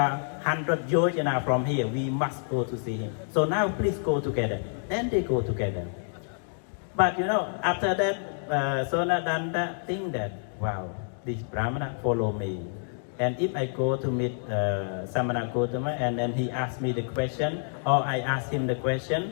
100 yojana from here, we must go to see him. So now, please go together. Then they go together. But after that, Sonadanda think that, wow, this Brahmana follow me. And if I go to meet Samana Gautama, and then he asks me the question, or I ask him the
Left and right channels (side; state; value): right; silent; digital silence